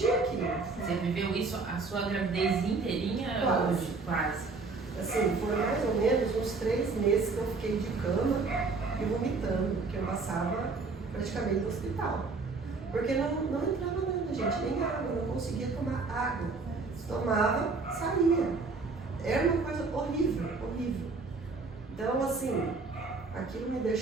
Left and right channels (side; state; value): left; quieter; 4.1 dB